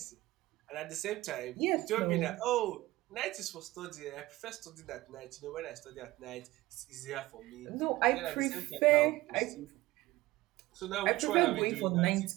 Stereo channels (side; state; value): left; quieter; 18.5 dB